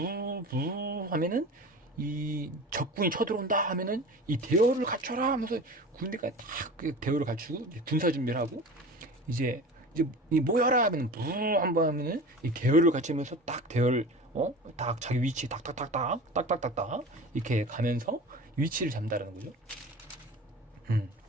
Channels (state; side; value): normal; both; correlation 0.35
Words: 하면은 이 적군이 쳐들어온다 하면은 이 대열을 갖춰라 하면서 군대가 딱 대열을 갖추고 군사 준비를 하고 이제 이 모여라 하면 부 한번 하면은 이 대열을 갖추면서 딱 대열 딱 자기 위치 딱딱딱딱 이렇게 가면서 위치를 잡는다는 거죠.